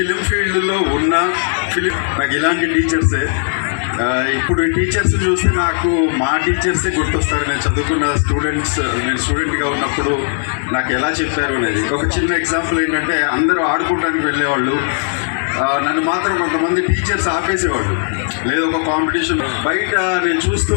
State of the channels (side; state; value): right; silent; 66 dB below the other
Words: ఫీల్డ్లో ఉన్న నాకు ఇలాంటి టీచర్సే. ఇప్పుడు ఈ టీచర్స్ చూస్తే నాకు మా టీచర్సే గుర్తొస్తారు. నేను చదువుకున్న నేను స్టూడెంట్గా ఉన్నప్పుడు నాకు ఎలా చెప్పారు అనేది. ఒక చిన్న ఎగ్జాంపుల్ ఏంటంటే, అందరూ ఆడుకోవడానికి వెళ్ళేవాళ్ళు, నన్ను మాత్రం కొంతమంది టీచర్స్ ఆపేసేవాళ్ళు. లేదు ఒక కాంపిటీషన్ బయట నేను చూస్తూ